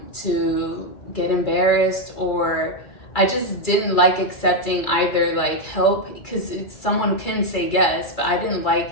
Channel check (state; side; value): late; right; 2.3 ms